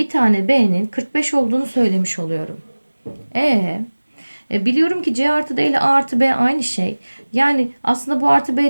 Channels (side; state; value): both; inverted; correlation -1.00